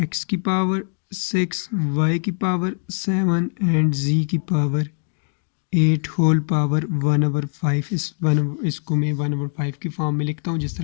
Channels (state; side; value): silent; right; 59 dB below the other